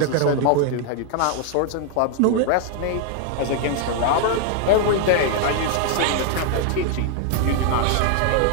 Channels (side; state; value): both; different; correlation 0.00